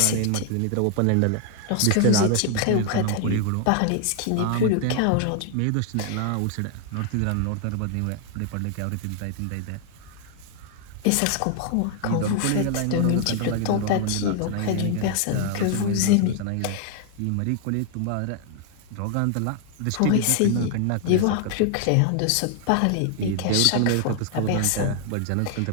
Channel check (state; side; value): different; both; correlation 0.00